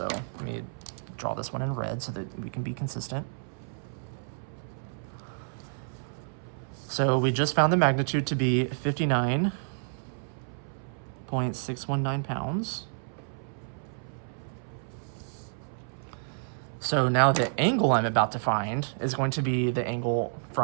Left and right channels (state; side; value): silent; left; 58 dB below the other